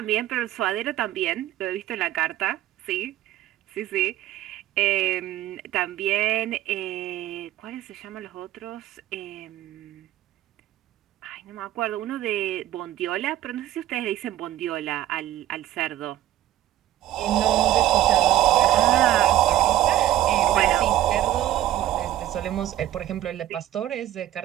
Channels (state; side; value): quieter; left; 13.4 dB